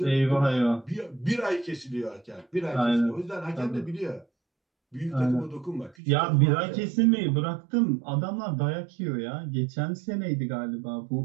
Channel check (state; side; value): drops out; left; at 6.0 s